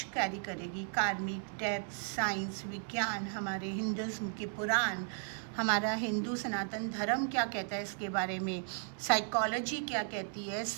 कैरी करेगी। कार्मिक, डेप्थ, साइंस, विज्ञान, हमारे हिंदुज़्म के पुराण, हमारा हिंदू सनातन धर्म क्या कहता है इसके बारे में, साइकोलॉजी क्या कहती है,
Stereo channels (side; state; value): left; silent; 54 dB below the other